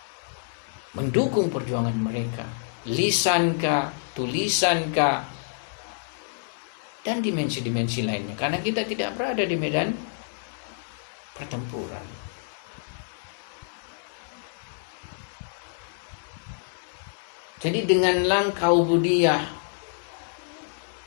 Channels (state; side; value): silent; right; 58 dB below the other